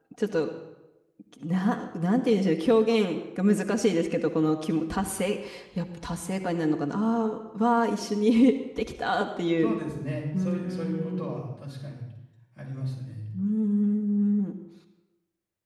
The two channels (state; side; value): identical; both; correlation 1.00